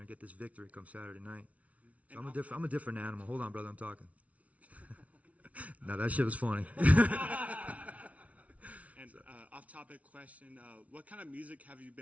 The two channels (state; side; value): late; left; 0.067 ms